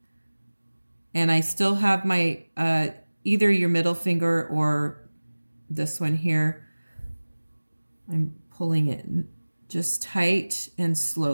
And I still have my, either your middle finger or this one here. I'm pulling it just tight and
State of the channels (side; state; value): both; inverted; correlation -1.00